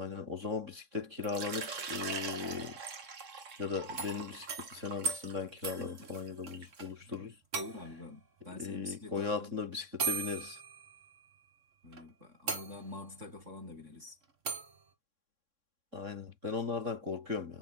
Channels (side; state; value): left; late; 3.6 ms